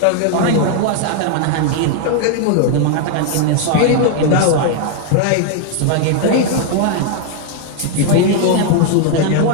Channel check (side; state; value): both; different; correlation 0.00